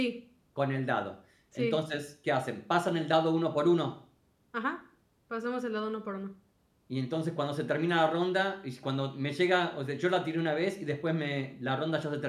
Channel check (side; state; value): both; identical; correlation 1.00